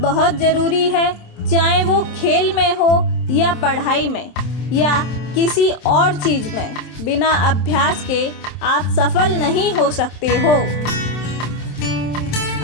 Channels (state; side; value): late; right; 27 ms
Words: बहुत ज़रूरी है, चाहे वो खेल में हो या पढ़ाई में या किसी और चीज़ में। बिना अभ्यास के आप सफल नहीं हो सकते हो।